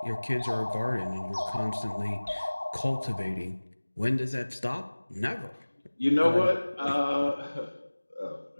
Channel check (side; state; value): both; inverted; correlation -1.00